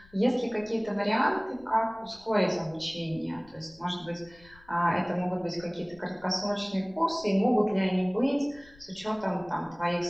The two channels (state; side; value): noise; left; rumble, 26 dB below the sound